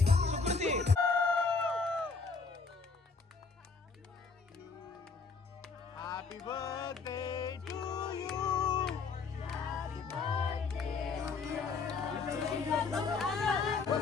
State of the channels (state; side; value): quieter; right; 4.7 dB